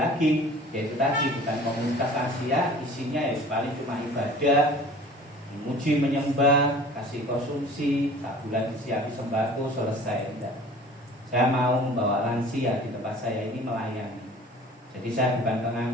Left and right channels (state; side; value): normal; both; correlation 0.46